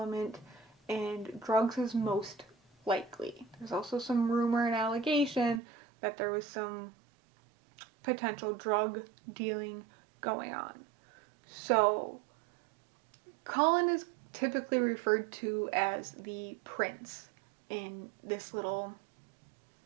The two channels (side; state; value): left; drops out; at 5.6 s